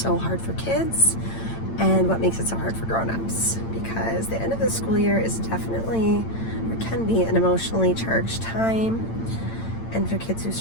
hard for kids and what makes it so hard for grown-ups, because the end of the school year is definitely, or can be, an emotionally charged time. And for kids who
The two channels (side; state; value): right; late; 8.9 ms